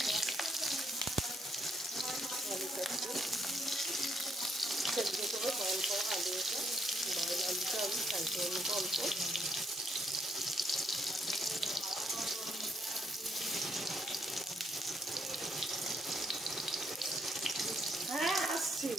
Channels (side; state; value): both; normal; correlation 0.73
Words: অল্প অল্প। হ্যাঁ আসছি।